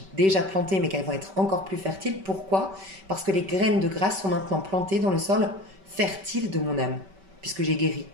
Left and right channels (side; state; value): left; late; 5.2 ms